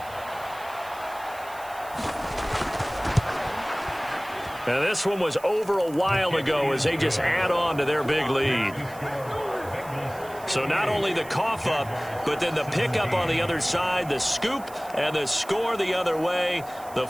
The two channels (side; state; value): right; noise; hiss, 20 dB below the sound